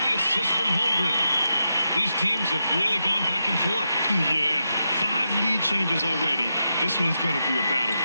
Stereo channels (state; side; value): inverted; both; correlation -0.86